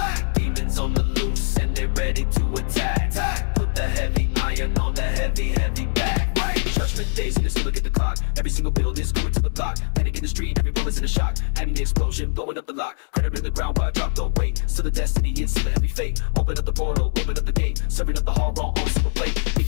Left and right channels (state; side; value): silent; right; digital silence